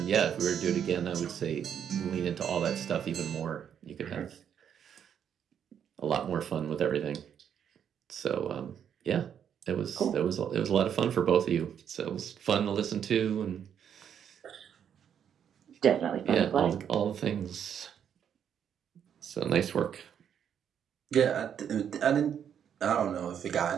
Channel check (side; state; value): left; quieter; 8.6 dB